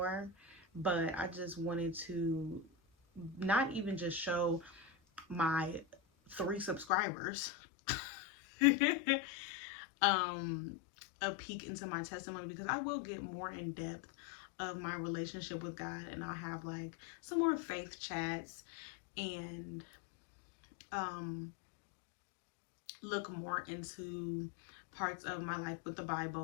but I just wanted to not even just show my 3 subscribers a peek into my testimony, because I will get more in depth of my relationship with God, and I'll have like some more faith chats and look more into parts of my life with the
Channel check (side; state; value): right; drops out; at 6.9 s